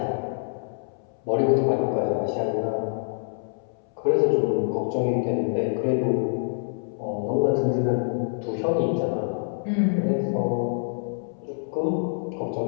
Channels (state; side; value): silent; right; 61 dB below the other